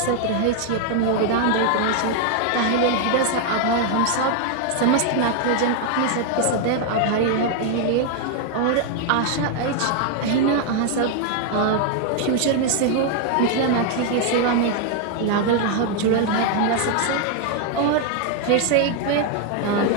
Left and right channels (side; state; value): both; different; correlation 0.00